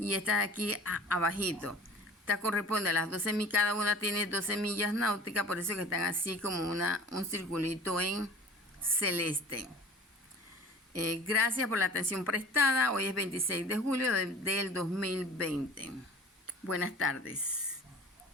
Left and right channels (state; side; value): normal; both; correlation 0.43